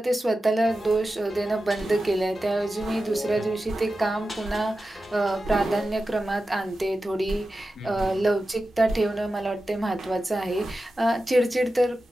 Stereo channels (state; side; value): normal; both; correlation 0.92